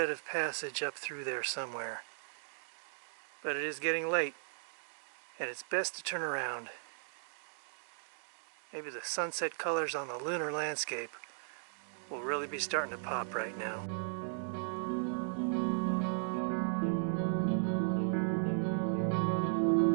of passage up through there somewhere, but it is getting late, and it's best to turn around. Maybe the sunset colors on the lunar landscape will really be starting to pop right now.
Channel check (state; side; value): silent; left; digital silence